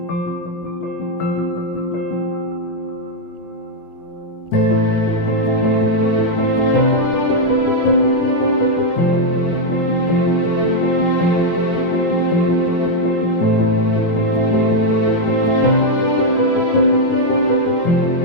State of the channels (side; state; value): right; late; 17 ms